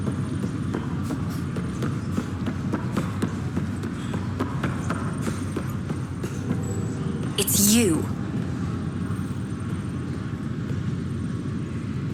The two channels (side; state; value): both; identical; correlation 1.00